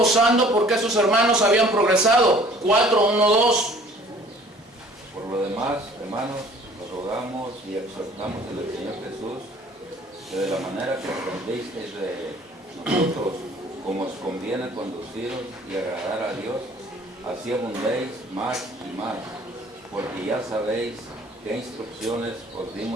porque sus hermanos habían progresado. 4:1-2. Por lo demás, hermanos, os rogamos y exhortamos en el Señor Jesús, que de la manera que aprendisteis de nosotros, como os conviene conduciros y agradar a Dios, así abundéis más y más, porque ya sabéis qué instrucciones os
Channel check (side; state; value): both; normal; correlation 0.53